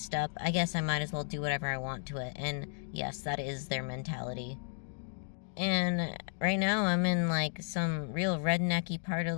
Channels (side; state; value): right; silent; digital silence